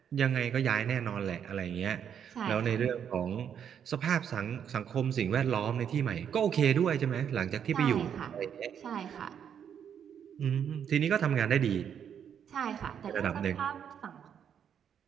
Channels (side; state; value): left; quieter; 8.3 dB